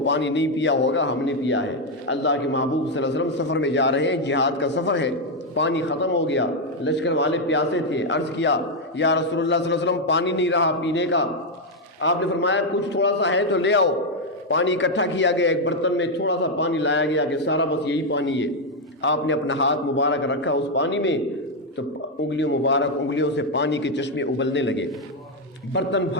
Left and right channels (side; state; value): both; normal; correlation 0.02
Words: پانی نہیں پیا ہوگا، ہم نے پیا ہے۔ اللہ کے محبوب صلی اللہ علیہ وسلم سفر میں جا رہے ہیں، جہاد کا سفر ہے، پانی ختم ہو گیا، لشکر والے پیاسے تھے، عرض کیا یا رسول اللہ صلی اللہ علیہ وسلم پانی نہیں رہا پینے کا۔ آپ نے فرمایا کچھ تھوڑا سا ہے تو لے آؤ۔ پانی اکٹھا کیا گیا، ایک برتن میں تھوڑا سا پانی لایا گیا کہ سارا بس یہی پانی ہے۔ آپ نے اپنا ہاتھ مبارک رکھا اس پانی میں تو انگلیوں سے پانی کے چشمے ابلنے لگے، برتن